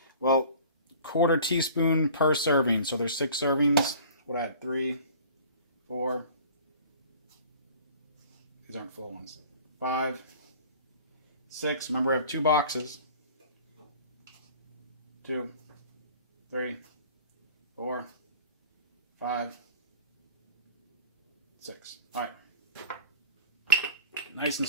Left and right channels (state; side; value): inverted; both; correlation -0.46